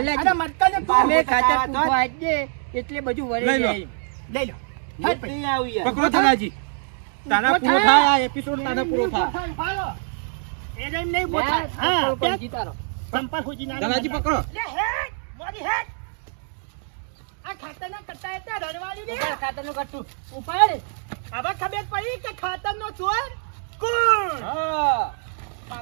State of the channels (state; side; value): silent; left; 58 dB below the other